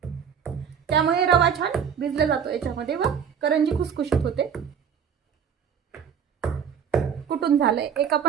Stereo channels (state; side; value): quieter; left; 7.6 dB